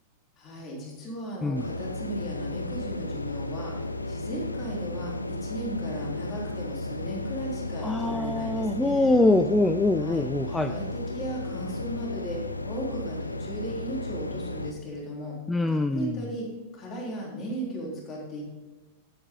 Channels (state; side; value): normal; both; correlation 0.38